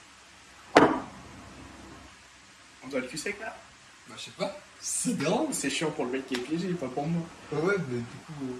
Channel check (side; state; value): both; identical; correlation 1.00